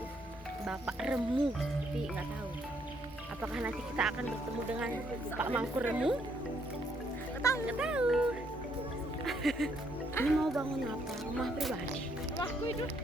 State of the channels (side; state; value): both; normal; correlation 0.71